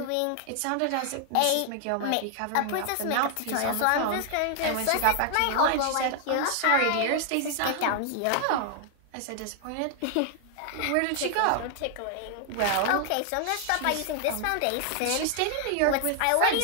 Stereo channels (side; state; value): both; different; correlation 0.00